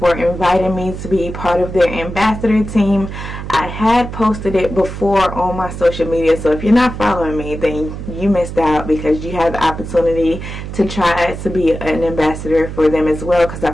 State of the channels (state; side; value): noise; right; hum, 8 dB below the sound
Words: inviting me to be part of their ambassador team. I had posted it before on my social media, so if you're not following me, then you missed out, because you have the opportunity to try to be an ambassador for them as well, because I